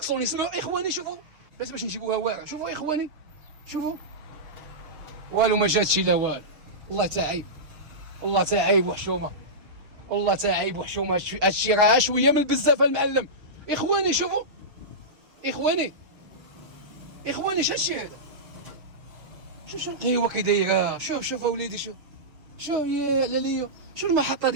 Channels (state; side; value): late; left; 6.7 ms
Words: سمعوا اخواني. شوفوا باش نجيبوها واعره. شوفوا اخواني والو ما جاتش لا والو. والله تا عيب وحشومه، هادشي راه شويه من بزاف المعلم. اخواني شوفوا اخواني هادشي هذا؟ شوف القهوه كي دايره، شوف اوليدي شوف يا علاليو، شوف المحطه